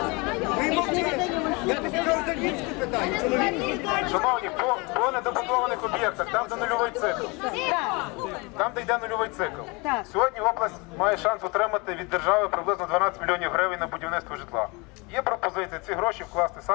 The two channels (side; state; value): right; quieter; 27.7 dB